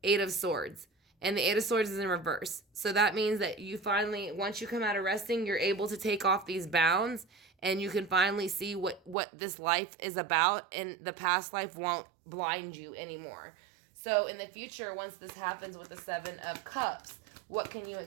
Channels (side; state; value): left; drops out; at 9.2 s